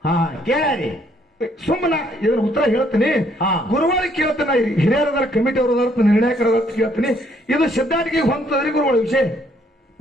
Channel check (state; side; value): normal; both; correlation 0.67